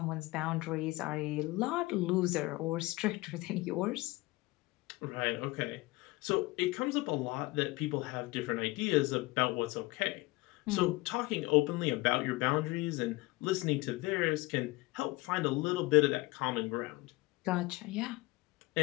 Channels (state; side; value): quieter; right; 21.7 dB